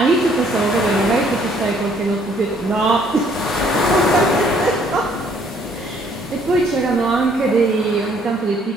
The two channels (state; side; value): normal; both; correlation 0.63